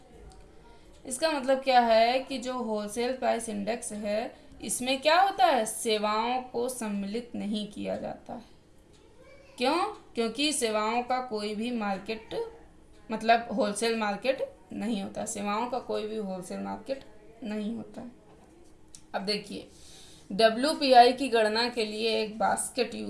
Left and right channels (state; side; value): identical; both; correlation 1.00